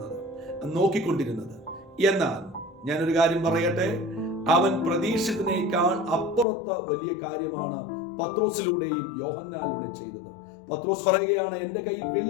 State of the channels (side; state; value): right; drops out; at 6.5 s